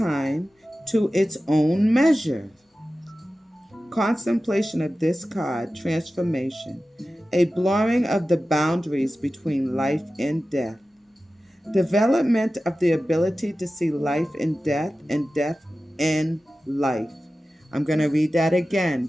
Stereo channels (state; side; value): normal; both; correlation 0.95